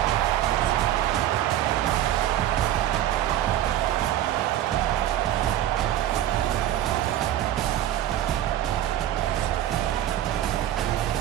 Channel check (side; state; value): left; quieter; 12.3 dB